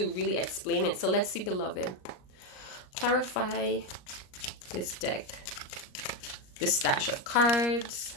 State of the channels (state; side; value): late; right; 38 ms